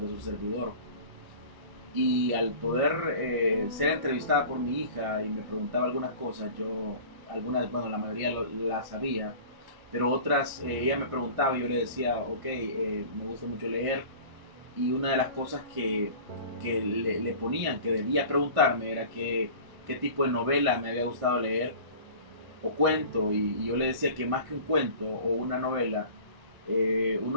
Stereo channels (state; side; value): late; left; 1.0 ms